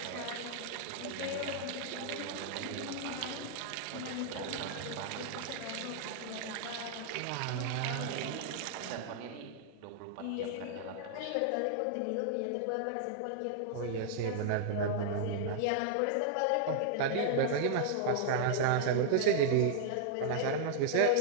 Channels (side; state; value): both; different; correlation -0.01